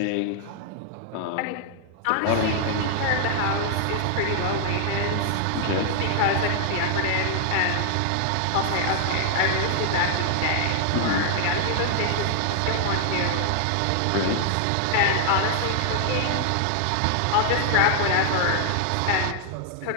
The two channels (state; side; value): different; both; correlation 0.00